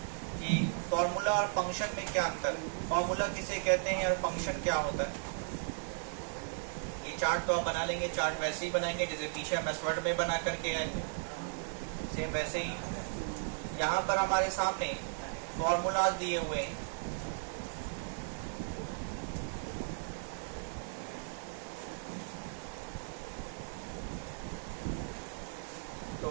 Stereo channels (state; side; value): silent; left; digital silence